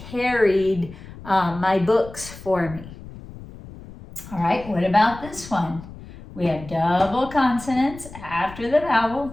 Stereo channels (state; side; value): noise; left; rumble, 16 dB below the sound